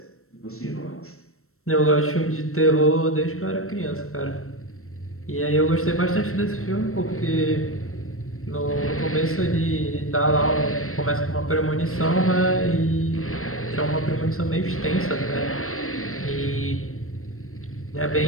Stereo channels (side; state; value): right; late; 0.63 ms